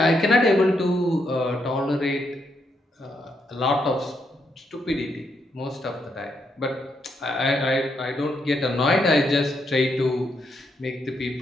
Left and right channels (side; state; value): both; normal; correlation 0.79